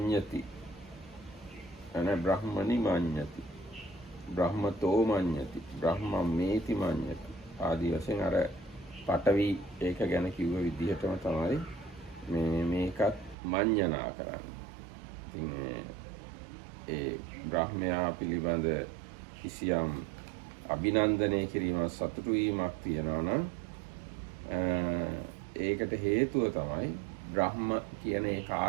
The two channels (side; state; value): left; drops out; at 13.4 s